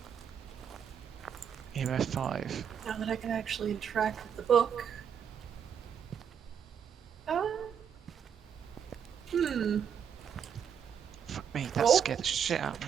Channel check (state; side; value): quieter; left; 7.9 dB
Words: EMF 5. now that I can actually interact with the book. Fuck me, that Oh. scared the shit out